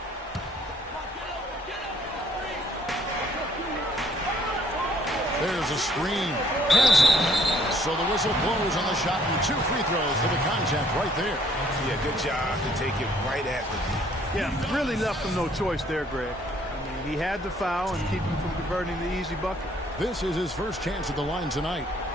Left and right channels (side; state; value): both; normal; correlation 0.62